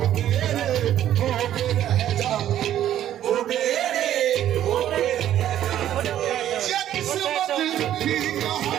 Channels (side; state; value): left; quieter; 11.7 dB